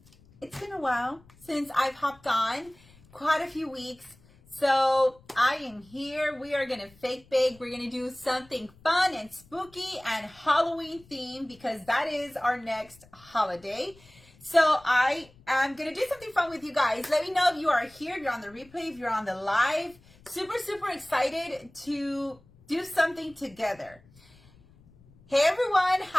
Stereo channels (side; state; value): left; noise; rumble, 27 dB below the sound